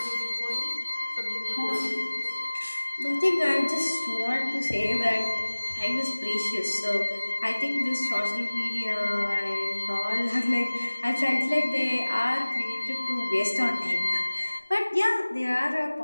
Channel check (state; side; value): inverted; both; correlation -1.00